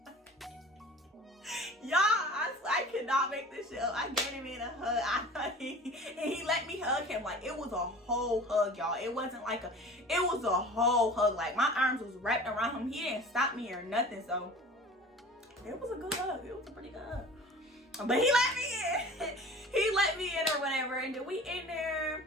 Y'all, I cannot make this shit up. I gave him in a hug. He let me hug him. Like, it was a whole hug, y'all. It wasn't like it was a whole hug. Like, my arms was wrapped around him. He didn't stop me or nothing. So, it was a good hug. It was a pretty good hug. But he let me in. He let me in or whatever. And then we in there.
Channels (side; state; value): both; normal; correlation 0.41